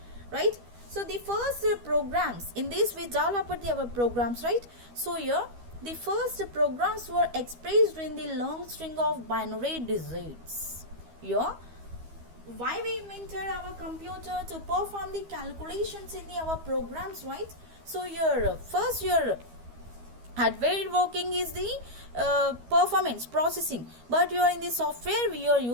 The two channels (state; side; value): late; left; 12 ms